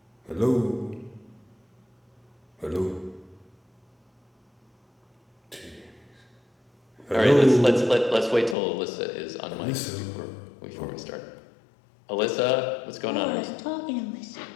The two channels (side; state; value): right; drops out; at 8.6 s